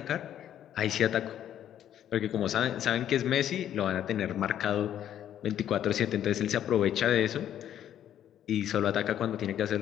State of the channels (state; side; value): quieter; right; 10.7 dB